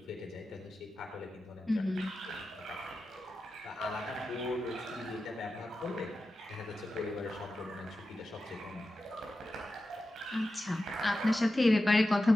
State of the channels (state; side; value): normal; both; correlation 0.92